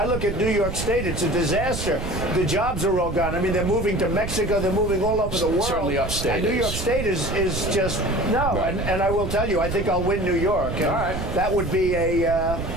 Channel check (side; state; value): right; noise; rumble, 6 dB below the sound